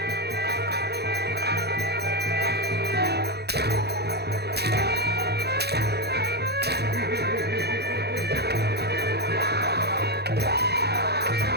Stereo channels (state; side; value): late; left; 0.48 ms